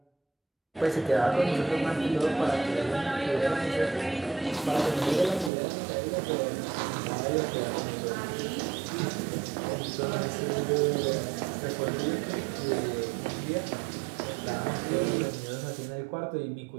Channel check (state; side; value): drops out; left; at 5.5 s